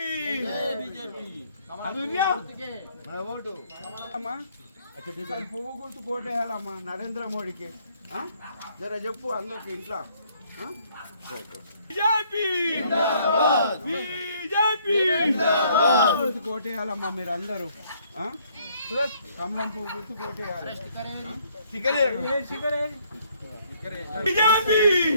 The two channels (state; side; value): inverted; both; correlation -0.65